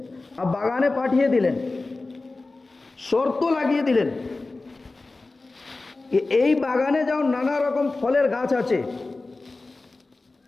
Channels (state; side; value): quieter; right; 3.4 dB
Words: আর বাগানে পাঠিয়ে দিলেন, শর্ত লাগিয়ে দিলেন কি এই বাগানে যাও, নানা রকম ফলের গাছ আছে,